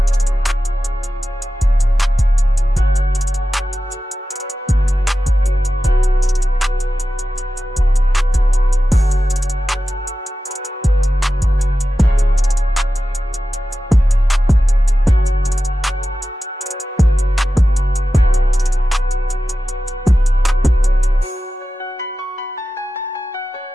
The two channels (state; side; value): normal; both; correlation 0.93